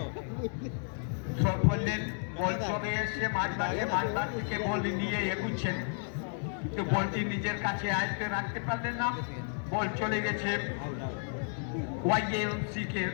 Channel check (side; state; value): right; silent; 56 dB below the other